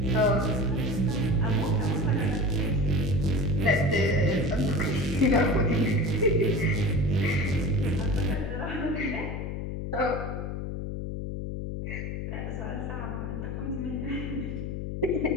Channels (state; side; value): noise; left; hum, 4 dB below the sound